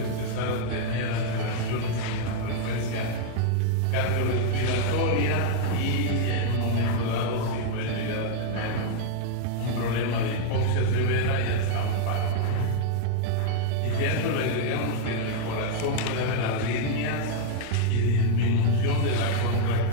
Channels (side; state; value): both; different; correlation -0.01